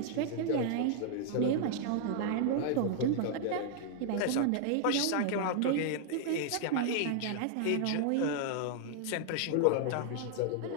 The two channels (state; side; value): different; both; correlation 0.00